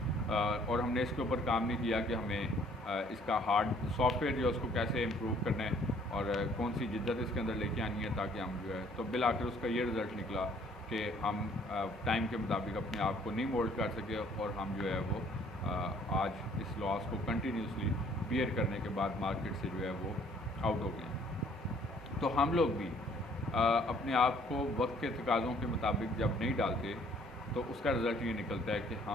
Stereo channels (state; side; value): normal; both; correlation 0.60